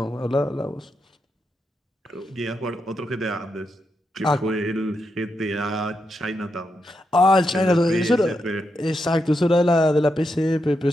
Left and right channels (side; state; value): both; normal; correlation 0.84